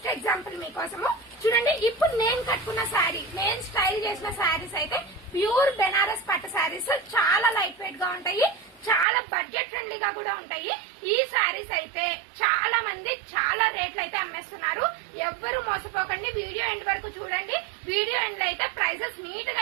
ఎగ్జాంపుల్ మీకోసము. చూడండి, ఇప్పుడు నేను కట్టుకున్న శారీ, నేను స్టైల్ చేసిన శారీస్ అయితే ప్యూర్ బెనారస్ పట్టు శారీస్. చాలా లైట్ వెయిట్ గా ఉంటాయి, చాలా బడ్జెట్ ఫ్రెండ్లీగా కూడా ఉంటాయి. ఈ శారీస్ అయితే చాలా మంది చాలా రేట్లు అయితే అమ్మేస్తున్నారు. ఎవ్వరు మోసపోకండి, వీడియో ఎండ్ వరకు చూడండి. వీడియో ఎండ్ లో అయితే ప్రైజెస్ నీట్ గా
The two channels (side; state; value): left; drops out; at 9.1 s